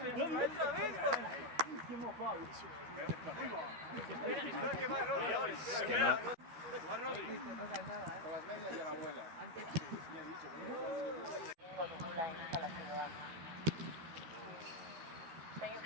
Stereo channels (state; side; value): late; left; 13 ms